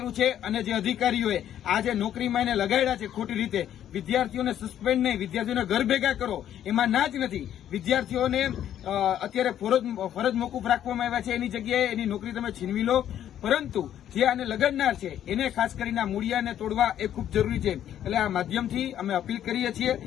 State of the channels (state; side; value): quieter; right; 10.7 dB